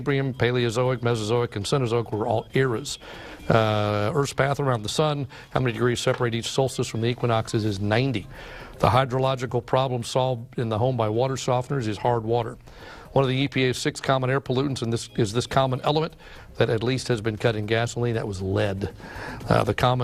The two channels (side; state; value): both; identical; correlation 1.00